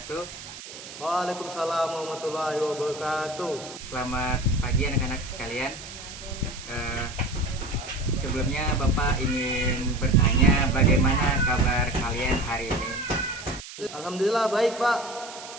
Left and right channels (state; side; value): noise; right; hiss, 13 dB below the sound